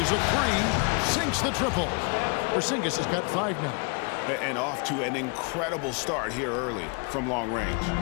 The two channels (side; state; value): right; quieter; 34.3 dB